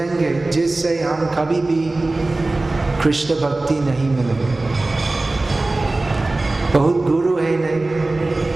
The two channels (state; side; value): quieter; left; 3.0 dB